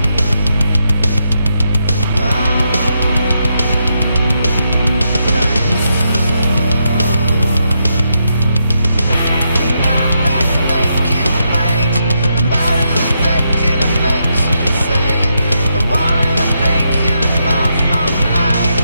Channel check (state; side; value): inverted; both; correlation -0.80